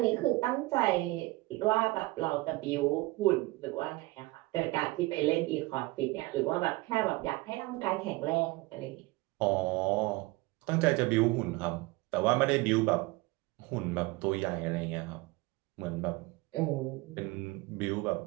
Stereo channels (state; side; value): quieter; left; 21.7 dB